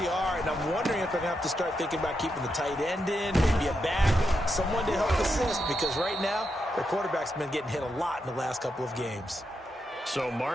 are, and I'm wondering if they're going to have to start thinking about keeping the tight end in, maybe a back, someone to help assist, because right now, their quarterback's been getting hit a lot in the last couple of games. So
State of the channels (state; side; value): normal; both; correlation 0.84